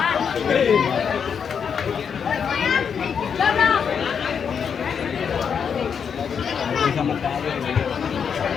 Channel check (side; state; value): right; quieter; 6.9 dB